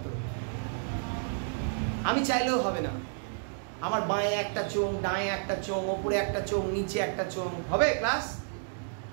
তো। আমি চাইলেও হবে না। আমার বাঁয়ে একটা চোখ, ডাঁয়ে একটা চোখ, ওপরে একটা চোখ, নিচে একটা চোখ, হবে ক্লাস?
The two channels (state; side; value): silent; left; digital silence